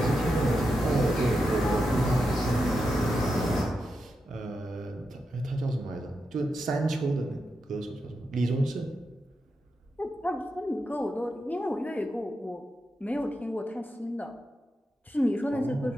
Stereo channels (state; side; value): normal; both; correlation 0.87